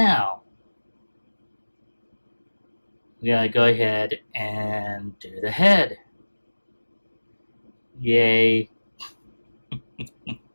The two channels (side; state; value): both; inverted; correlation -1.00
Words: we gotta go ahead and do the head. Yay.